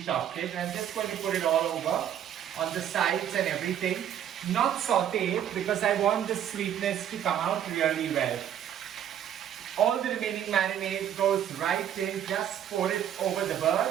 it. I'm just going to put it all over on the sides and everything. Not sauteed because I want the sweetness to come out really well. All the remaining marinade goes right in, just pour it over the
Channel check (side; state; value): left; quieter; 10.1 dB